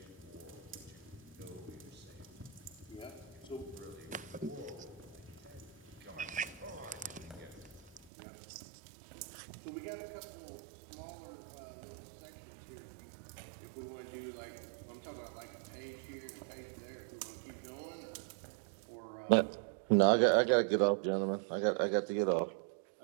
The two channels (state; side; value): drops out; left; at 8.1 s